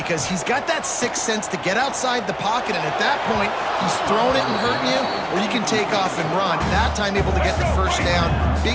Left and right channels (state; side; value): identical; both; correlation 1.00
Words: he's got that sixth sense to get outside the pocket, and at that point, he's throwing it and hurting you, or you can take off and run. That time able to get the first down.